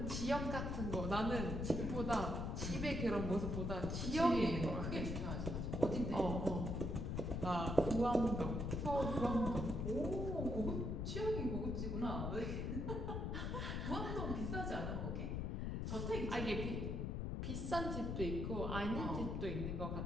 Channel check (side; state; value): left; noise; rumble, 1 dB below the sound